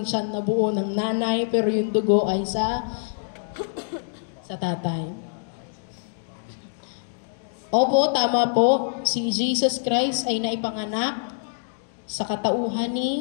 tiyan na buo ng nanay, pero yung dugo ay sa tatay. Opo, tama po. Si Jesus Christ ay naipanganak sa katauhan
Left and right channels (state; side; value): silent; right; digital silence